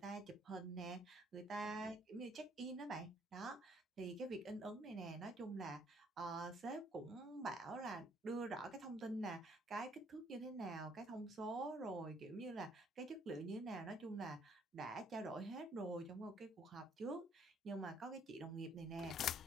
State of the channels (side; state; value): both; normal; correlation 0.65